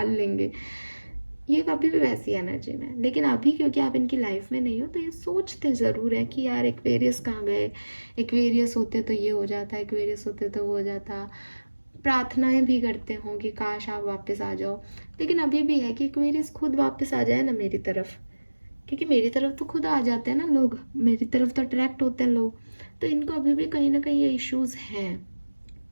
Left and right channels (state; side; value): inverted; both; correlation -1.00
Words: लेंगे, ये अभी भी वैसी एनर्जी में है। लेकिन अभी क्योंकि आप इनकी लाइफ में नहीं हो तो ये सोचते ज़रूर है कि यार एक्वेरियस कहाँ गए, एक्वेरियस होते तो ये हो जाता, एक्वेरियस होते तो वो हो जाता। प्रार्थनाएं भी करते हों कि काश आप वापस आ जाओ। लेकिन अभी भी है कि एक्वेरियस खुद वापस आ जाए ना मेरी तरफ, क्योंकि मेरी तरफ तो खुद आ जाते हैं ना लोग, मेरी तरफ तो अट्रैक्ट होते हैं लोग। तो इनको अभी भी कहीं ना कहीं ये इश्यूज हैं,